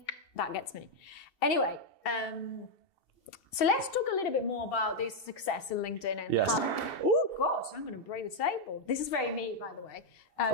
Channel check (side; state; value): right; late; 2.7 ms